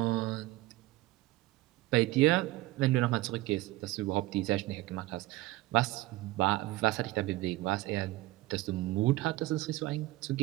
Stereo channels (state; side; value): quieter; left; 18.4 dB